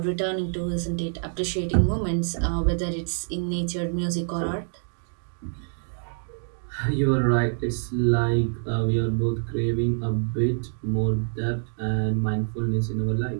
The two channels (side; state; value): left; silent; digital silence